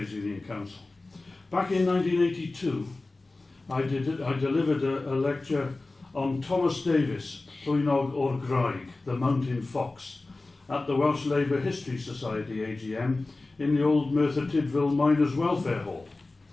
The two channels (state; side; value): quieter; right; 3.2 dB